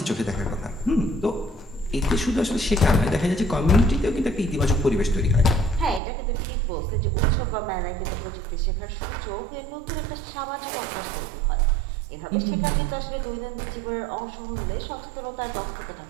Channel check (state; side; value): drops out; left; at 6.0 s